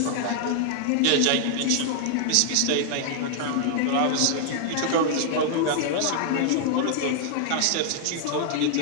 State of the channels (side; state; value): both; different; correlation 0.00